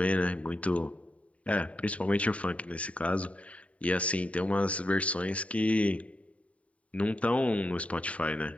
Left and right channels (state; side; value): late; right; 0.066 ms